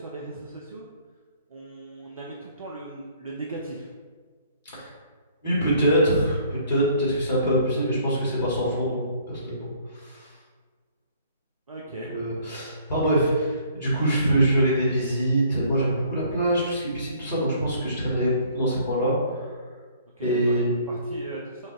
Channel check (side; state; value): both; inverted; correlation -0.59